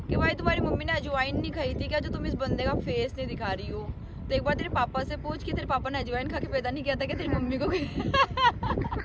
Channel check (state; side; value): identical; both; correlation 1.00